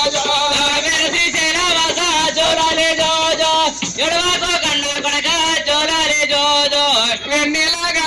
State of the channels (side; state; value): right; noise; hum, 26 dB below the sound